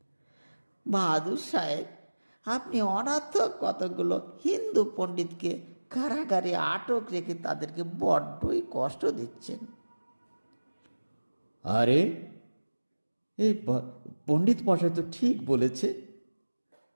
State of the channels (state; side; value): inverted; both; correlation -1.00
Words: বাহাদুর সাহেব, আপনি অনর্থক কতগুলো হিন্দু পণ্ডিতকে কারাগারে আটক রেখে তাদেরকে বড্ডই কষ্ট দিচ্ছেন। আরে এই পণ্ডিত মশাই তো ঠিক বলেছে,